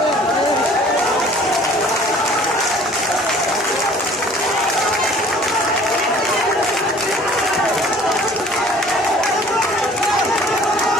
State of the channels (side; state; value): both; normal; correlation 0.51